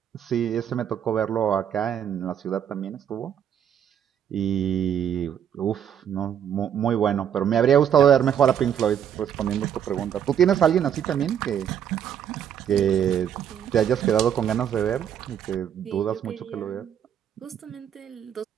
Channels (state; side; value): quieter; left; 9.1 dB